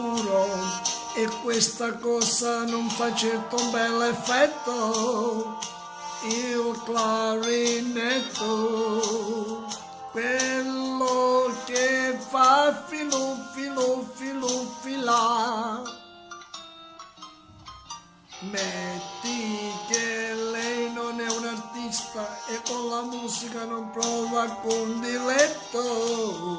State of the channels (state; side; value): identical; both; correlation 1.00